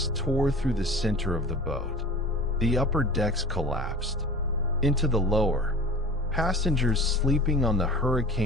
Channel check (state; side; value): normal; both; correlation 0.40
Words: tore through the center of the boat. The upper decks collapsed. Into the lower, passengers sleeping on the